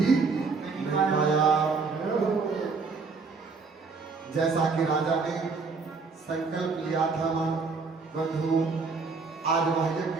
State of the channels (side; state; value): left; quieter; 4.6 dB